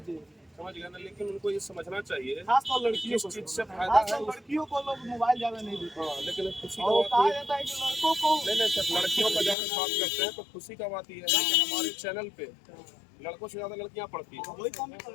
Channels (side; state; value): right; drops out; at 9.6 s